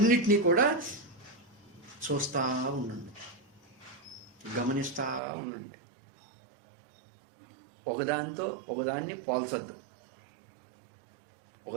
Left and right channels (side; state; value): left; drops out; at 5.2 s